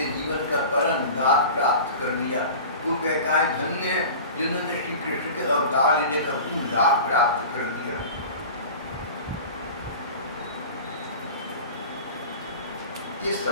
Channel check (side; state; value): both; inverted; correlation -0.37